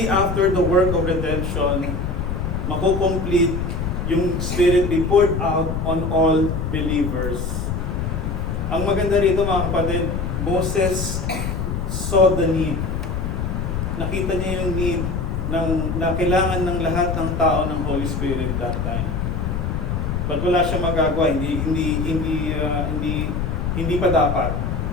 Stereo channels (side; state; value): left; noise; rumble, 2 dB below the sound